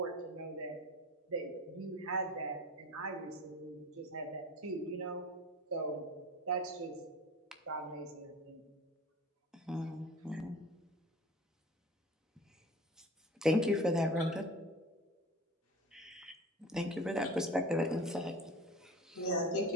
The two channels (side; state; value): both; normal; correlation 0.38